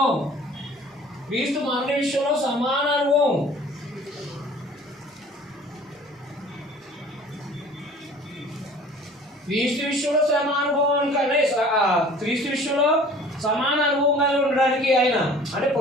క్రీస్తు మరణ విషయంలో సమాన అనుభవం. క్రీస్తు విషయంలో సమాన అనుభవం కానీ క్రీస్తు విషయంలో సమాన అనుభవం కలిగి ఉండడానికి ఆయన అంటే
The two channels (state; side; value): normal; both; correlation 0.48